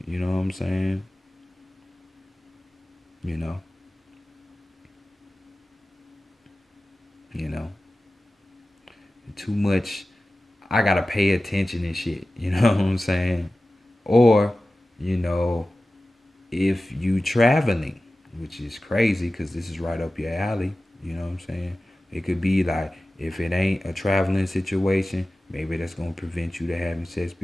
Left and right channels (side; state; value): both; normal; correlation 0.96